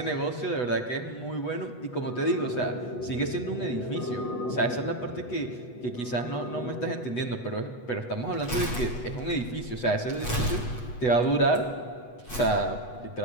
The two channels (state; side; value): late; right; 8.2 ms